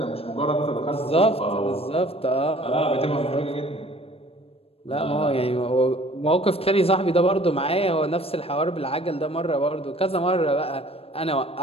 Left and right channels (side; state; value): right; late; 0.28 ms